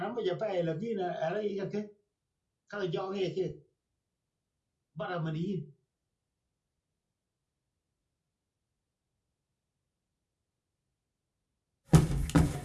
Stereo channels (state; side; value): identical; both; correlation 1.00